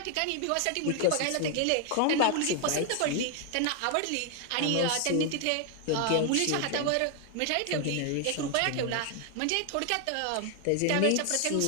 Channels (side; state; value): both; different; correlation 0.00